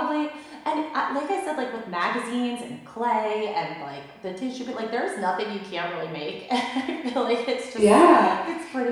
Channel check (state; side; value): identical; both; correlation 1.00